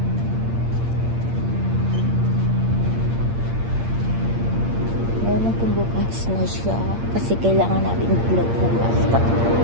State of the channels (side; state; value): left; late; 8.7 ms